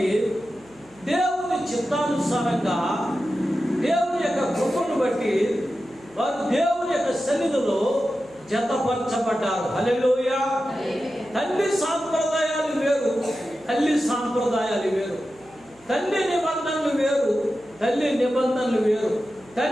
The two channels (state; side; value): noise; right; hum, 30 dB below the sound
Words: దేవుని చిత్తానుసారంగా దేవుని యొక్క కృపను బట్టి వారు దేవుని యొక్క సన్నిధిలో జతపరచబడ్డారు. హల్లెలూయా. తల్లి సాంప్రదాయాలు వేరు, తల్లి సాంప్రదాయాలు వేరు. తండ్రి నిబంధనలు వేరు, తల్లి నిబంధనలు వేరు.